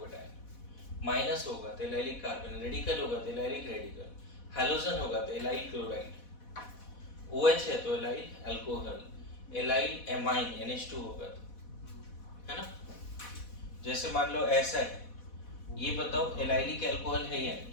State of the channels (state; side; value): late; right; 4.1 ms